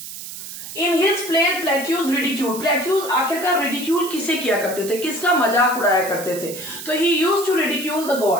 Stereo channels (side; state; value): right; noise; hiss, 11 dB below the sound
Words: in his play Plautus ridicule, Plautus आखिरकार रिडिक्यूल किसे किया करते थे, किसका मजाक उड़ाया करते थे? तो he used to ridicule the